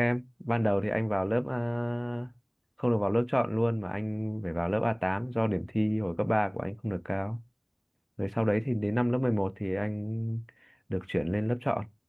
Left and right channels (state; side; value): identical; both; correlation 1.00